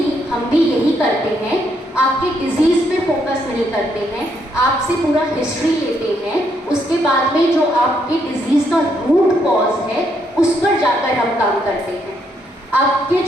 हम भी यही करते हैं, आपके डिजीज़ पे फोकस नहीं करते हैं, आपसे पूरा हिस्ट्री लेते हैं, उसके बाद में जो आपके डिजीज़ का रूट कॉज है उस पर जाकर हम काम करते हैं। आपके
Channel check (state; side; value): normal; both; correlation 0.74